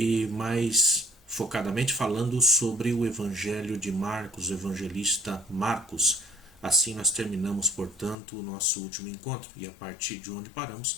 mais focadamente falando sobre o Evangelho de Marcos, o evangelista Marcos. Assim nós terminamos, portanto, o nosso último encontro e a partir de onde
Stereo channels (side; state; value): right; drops out; at 8.2 s